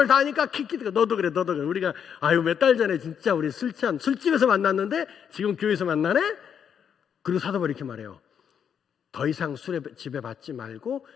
다 아니까 킥킥대고 너도 그래 너도 그래. 우리가 아유 몇 달 전에 진짜 우리 술 취한 술집에서 만났는데 지금 교회에서 만나네? 그리고 사도 바울이 이렇게 말해요. 더 이상 술의 지배 받지 말고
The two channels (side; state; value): right; quieter; 7.9 dB